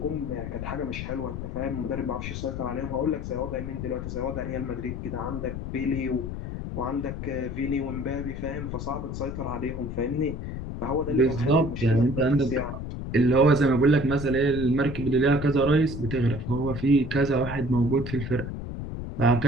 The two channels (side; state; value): left; noise; rumble, 6 dB below the sound